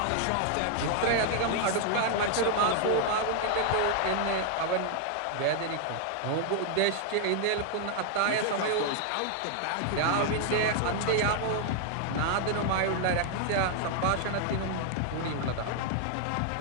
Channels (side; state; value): both; different; correlation 0.00